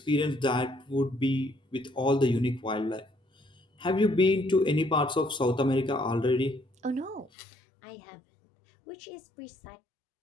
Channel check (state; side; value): drops out; right; at 7.3 s